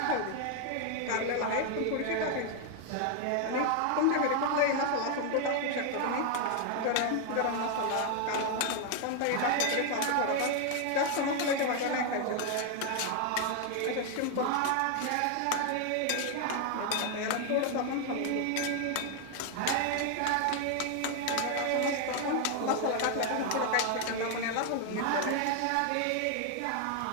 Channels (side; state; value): both; different; correlation 0.00